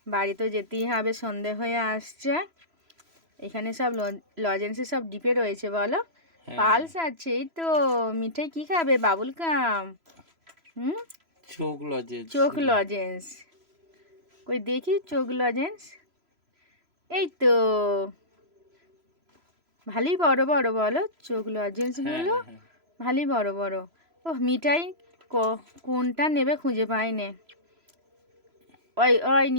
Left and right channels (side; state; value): left; late; 3.0 ms